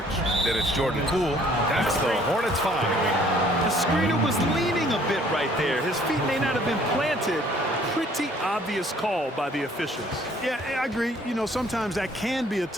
Then it's Jordan Poole. That's the Hornets 5. The screener was leaning a bit right there. His feet may not have been planted. Pretty obvious call by the officials. Yeah, I agree. You know, sometimes that can be a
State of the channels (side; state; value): both; normal; correlation 0.59